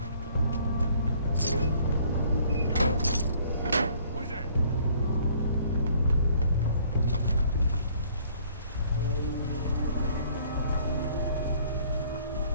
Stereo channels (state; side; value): inverted; both; correlation -0.59